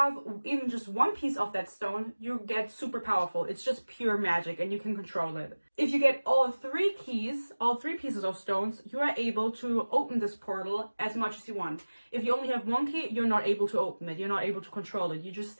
even just 1 piece of that stone, you get super powerful. It's just pure magic and you can control it. If you get all 3 keys, all 3 pieces of stones, you are able to open this portal as much as you want. If you only have 1 key, you're not able to open it. You're not able to control it. You just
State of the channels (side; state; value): both; inverted; correlation -1.00